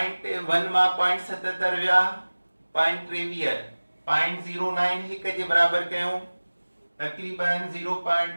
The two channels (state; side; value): inverted; both; correlation -1.00